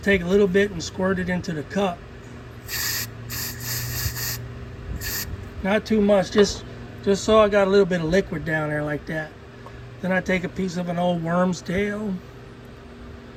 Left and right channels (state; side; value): identical; both; correlation 1.00